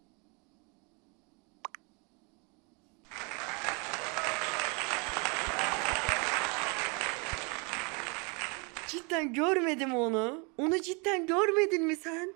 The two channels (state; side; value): quieter; left; 32.5 dB